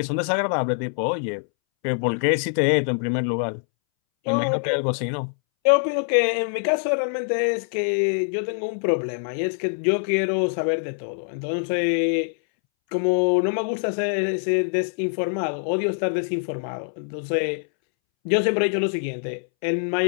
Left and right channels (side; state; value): right; silent; 62 dB below the other